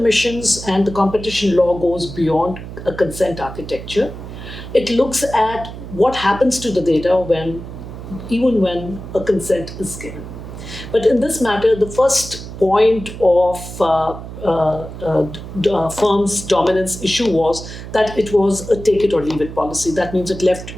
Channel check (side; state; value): right; noise; hum, 11 dB below the sound